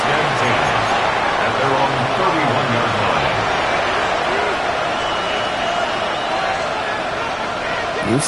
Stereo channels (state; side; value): identical; both; correlation 1.00